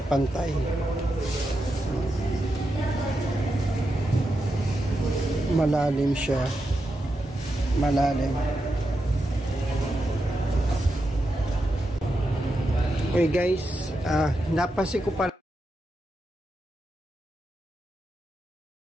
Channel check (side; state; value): both; normal; correlation 0.87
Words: pantay. Malalim siya. Malalim. Okay guys, napansin ko pala